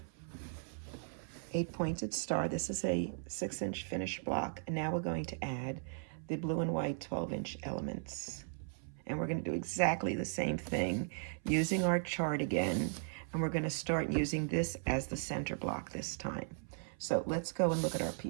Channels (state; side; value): silent; left; 53 dB below the other